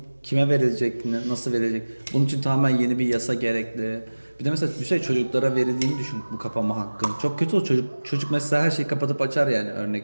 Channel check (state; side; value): inverted; both; correlation -1.00